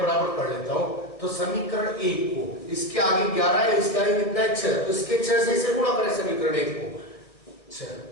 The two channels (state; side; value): late; right; 1.6 ms